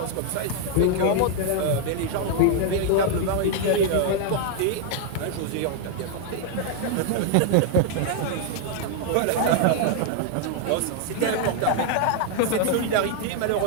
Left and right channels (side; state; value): both; different; correlation 0.00